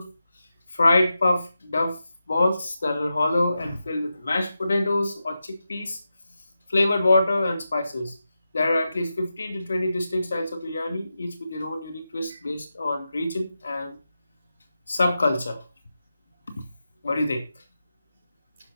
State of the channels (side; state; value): both; inverted; correlation -0.90